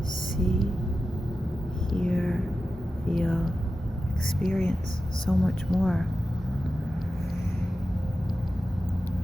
see, hear, feel, experience so much more.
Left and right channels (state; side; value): normal; both; correlation 0.92